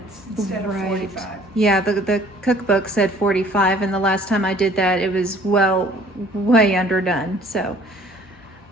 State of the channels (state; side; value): normal; both; correlation 0.54